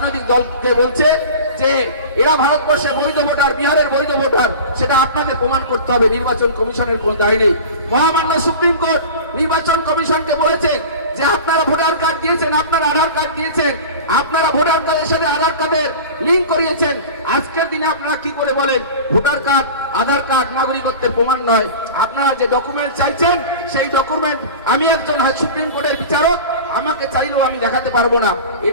দলকে বলছে যে এরা ভারতবর্ষে বৈধ ভোটার, বিহারের বৈধ ভোটার, সেটা আপনাদের প্রমাণ করতে হবে। নির্বাচন কমিশনের কোনো দায় নেই। মহামান্য সুপ্রিম কোর্ট নির্বাচন কমিশনকে বলেছে যে আপনারা ভোটার কার্ড দিয়েছেন, আপনারা আধার কার্ড দিয়েছেন, আপনারা ভোটার কার্ডের সাথে আধার কার্ডের লিঙ্ক করিয়েছেন। আজকের দিনে আপনারা কি করে বলেন ভোটার কার্ড, আধার কার্ড নাগরিকত্বের প্রমাণ নয়? আপনারা যে ডকুমেন্ট চাইছেন সেই ডকুমেন্ট আমি একজন সুপ্রিম কোর্টের বিচারক, আমাকে চাইলেও আমি দেখাতে পারবো না।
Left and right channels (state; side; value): inverted; both; correlation -0.35